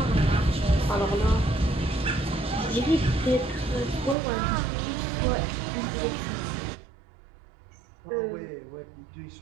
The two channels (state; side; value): drops out; left; at 4.2 s